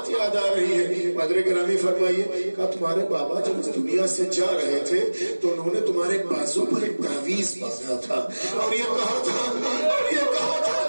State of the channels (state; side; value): inverted; both; correlation -1.00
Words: یاد آ رہی ہے، مدر گرامی فرمائیے، کہا تمہارے بابا جب اس دنیا سے جا رہے تھے تو انہوں نے تمہارے بازو پر ایک تعویذ باندھا تھا اور یہ کہا تھا